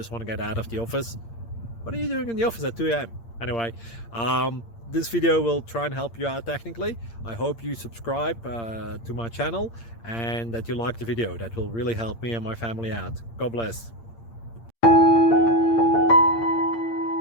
want to get out of the office. What are you doing in the office at 2 a.m.? Anyway, this video will try and help you out technically. I hope you subscribe to my channel and that you like the video. That will really help me and my family out. God bless.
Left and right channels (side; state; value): right; late; 8.7 ms